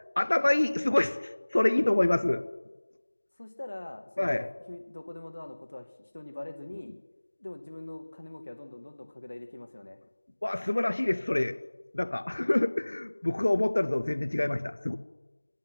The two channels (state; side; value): inverted; both; correlation -1.00